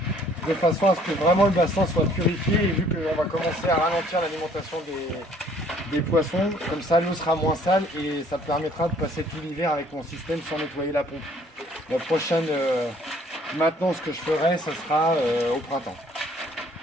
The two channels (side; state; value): both; normal; correlation 0.59